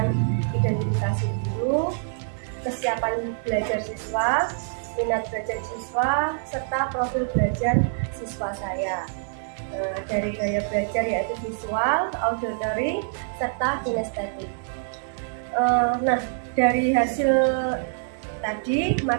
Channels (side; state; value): left; silent; digital silence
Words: identifikasi guru, kesiapan belajar siswa, minat belajar siswa, serta profil belajar siswa saya. Dari gaya belajar yaitu visual, auditory, serta kinestetik. Nah, dari hasil tadi